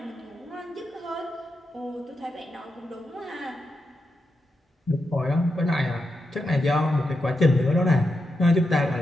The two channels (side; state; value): both; normal; correlation 0.86